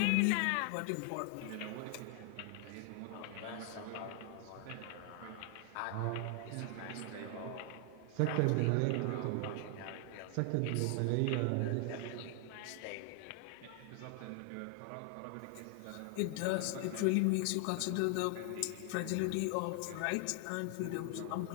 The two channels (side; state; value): both; different; correlation 0.00